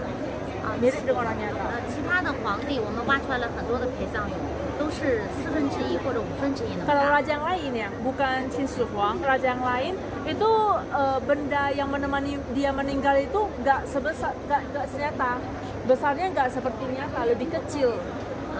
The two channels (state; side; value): identical; both; correlation 1.00